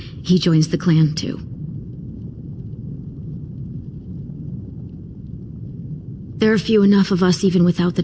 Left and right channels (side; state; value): both; identical; correlation 1.00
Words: joins the clan too. There are few enough of us even without the